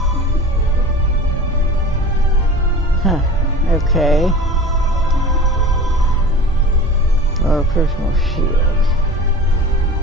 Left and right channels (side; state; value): both; normal; correlation 0.38